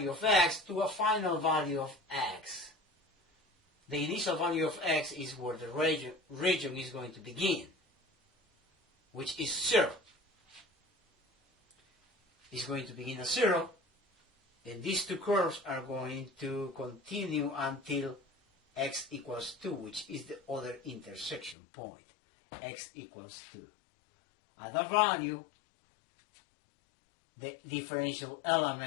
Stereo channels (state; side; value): drops out; right; at 21.6 s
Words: of x to a final value of x. The initial value of x is where the region is going to begin, which is 0. It's going to begin at 0, and these two curves are going to continue until x equals 2, which is the other intersection point. X equals 2. At that value, the differential